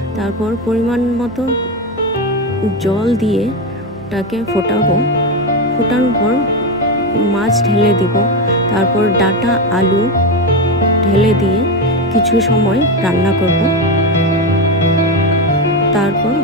তারপর পরিমাণ মতো জল দিয়ে ওটাকে ফোটাবো। ফোটানোর পর মাছ ঢেলে দিব। তারপর ডাঁটা আলু ঢেলে দিয়ে কিছু সময় রান্না করব। তারপর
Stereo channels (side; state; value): both; normal; correlation 0.14